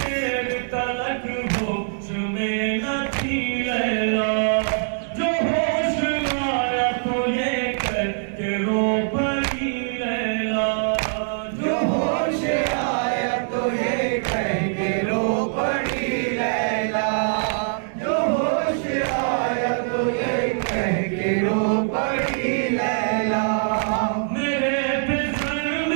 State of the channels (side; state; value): left; silent; digital silence